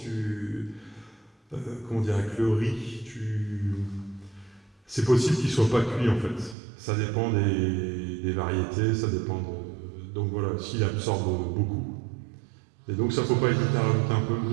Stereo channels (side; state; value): left; drops out; at 6.6 s